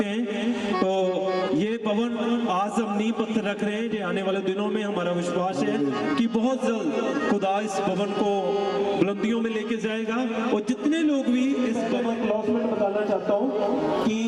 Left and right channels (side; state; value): both; identical; correlation 1.00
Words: हैं। तो ये भवन आज हम नींव पत्थर रख रहे हैं, जो आने वाले दिनों में हमारा विश्वास है कि बहुत जल्द खुदा इस भवन को बुलंदियों में लेके जाएगा। और जितने लोग भी इस भवन अनाउंसमेंट बताना चाहता हूँ कि